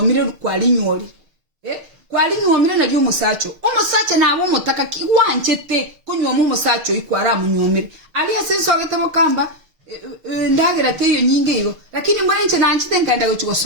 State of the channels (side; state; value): left; late; 6.6 ms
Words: kwali nyori kwali nyomire na byo musacho umusacha nabo mutaka kiwanchete kunywa mu musacho ikwara mu nyomire ali asenso agatamo kamba ndagira teyo nyinge iyo lakini mbona nche nanchite nkanda gochiko